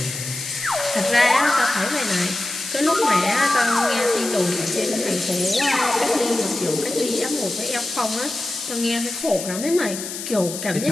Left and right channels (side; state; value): left; noise; hiss, 8 dB below the sound